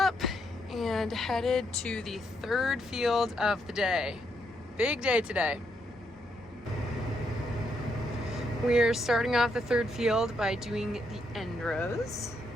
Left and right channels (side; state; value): both; normal; correlation 0.77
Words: and headed to the third field of the day. Big day today. We're starting off the third field by doing the end rows.